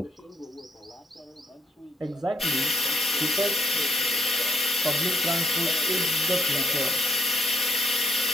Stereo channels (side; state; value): both; normal; correlation 0.71